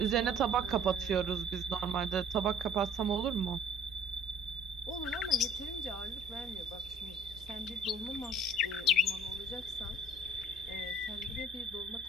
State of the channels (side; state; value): both; normal; correlation 0.53